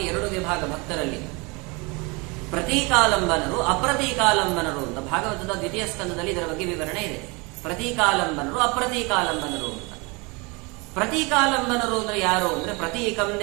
2 ವಿಭಾಗ ಭಕ್ತರಲ್ಲಿ, ಪ್ರತೀಕಾಲಂಬನರು, ಅಪ್ರತೀಕಾಲಂಬನರು ಅಂತ ಭಾಗವತದ 2ನೇ ಸ್ಕಂದದಲ್ಲಿ ಇದರ ಬಗ್ಗೆ ವಿವರಣೆ ಇದೆ. ಪ್ರತೀಕಾಲಂಬನರು, ಅಪ್ರತೀಕಾಲಂಬನರು ಅಂತ. ಪ್ರತೀಕಾಲಂಬನರು ಅಂದ್ರೆ ಯಾರು ಅಂದ್ರೆ, ಪ್ರತೀಕಂ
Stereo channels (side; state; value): left; quieter; 27.9 dB